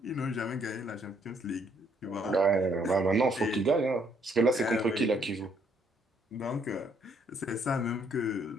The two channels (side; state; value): both; normal; correlation 0.68